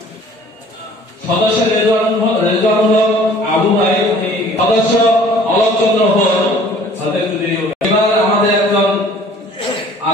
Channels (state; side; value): normal; both; correlation 0.52